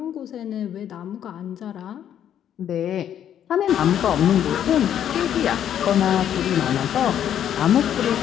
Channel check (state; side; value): quieter; right; 10.0 dB